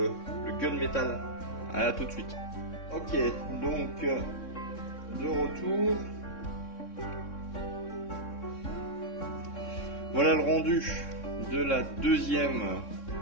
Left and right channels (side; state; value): right; late; 3.6 ms